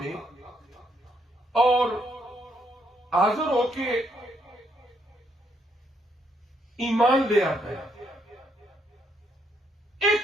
اور حاضر ہو کے ایمان لے آتا ہے۔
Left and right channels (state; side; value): normal; both; correlation 0.74